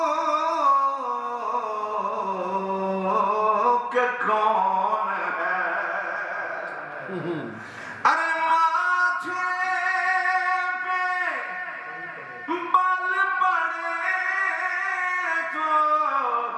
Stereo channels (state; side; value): identical; both; correlation 1.00